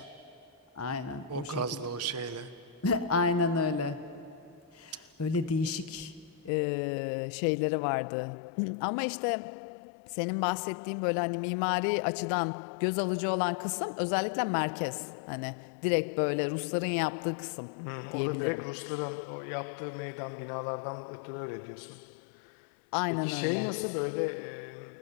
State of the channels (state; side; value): drops out; right; at 6.5 s